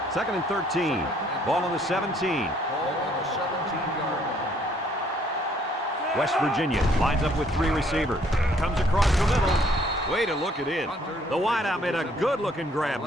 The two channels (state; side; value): normal; both; correlation 0.64